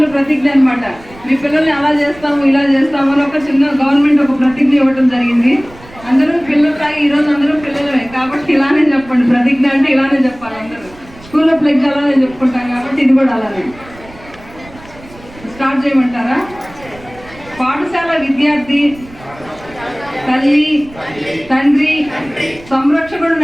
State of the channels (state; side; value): noise; right; rumble, 21 dB below the sound